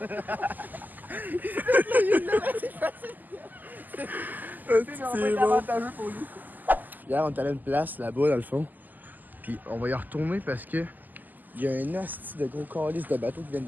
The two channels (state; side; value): late; left; 0.085 ms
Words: C'est bon. Hier, on est allé à une place là-bas, dans le fond. Puis on va y retourner parce que il y a un asti de gros calice de bateaux qui viennent